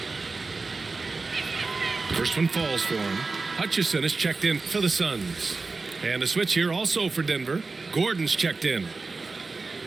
First one falls for him. Hutchison is checked in for the Suns. And a switch here also for Denver. Gordon's checked in.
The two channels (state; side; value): quieter; left; 4.0 dB